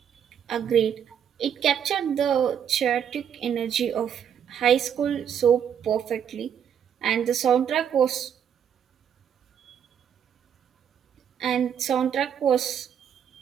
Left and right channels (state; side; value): quieter; left; 8.5 dB